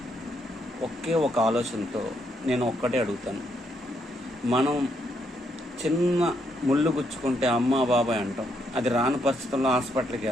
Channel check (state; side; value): normal; both; correlation 0.76